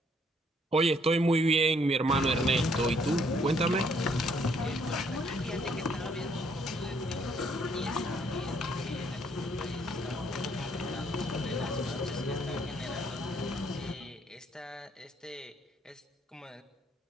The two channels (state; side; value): normal; both; correlation 0.68